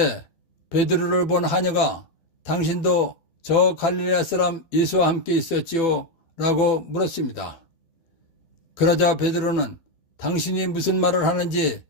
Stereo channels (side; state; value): right; late; 12 ms